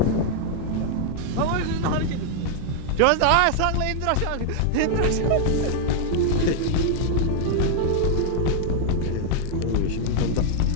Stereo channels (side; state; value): both; different; correlation 0.00